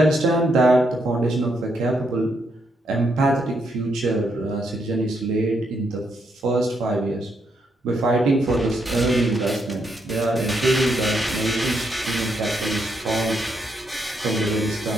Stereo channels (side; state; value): both; normal; correlation 0.77